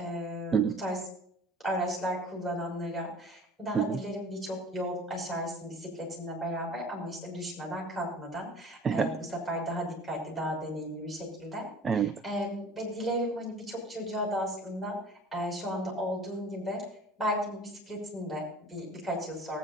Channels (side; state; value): both; normal; correlation 0.45